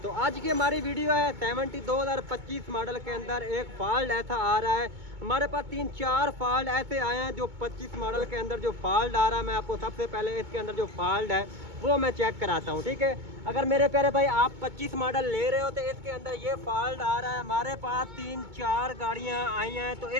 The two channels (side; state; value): left; late; 2.2 ms